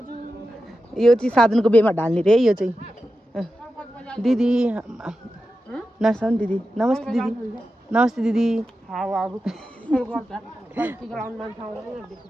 यो चाहिँ साधनको बेमा ढाल्ने रे यो चाहिँ दिदी नर्साउन दिदी नमस्ते दिदी नमस्ते दिदी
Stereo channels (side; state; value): both; normal; correlation 0.91